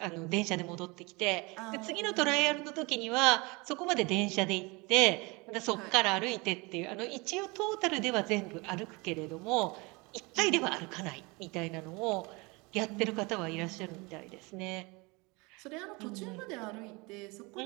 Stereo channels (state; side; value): quieter; left; 26.4 dB